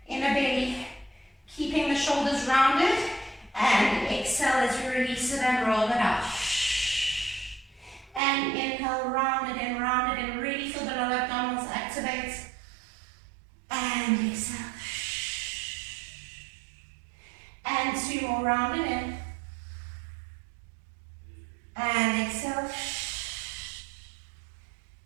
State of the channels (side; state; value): left; drops out; at 8.2 s